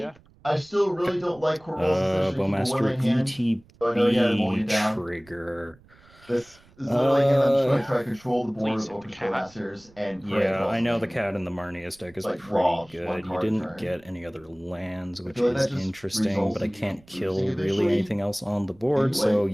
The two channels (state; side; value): noise; right; rumble, 27 dB below the sound